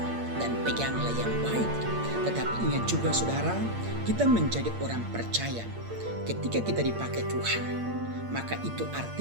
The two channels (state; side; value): late; left; 8.7 ms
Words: dan peganglah yang baik. Tetapi ingat juga saudara, kita menjadi orang percaya. Ketika kita dipakai Tuhan, maka itu